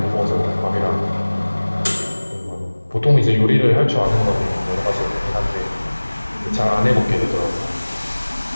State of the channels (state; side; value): inverted; both; correlation -1.00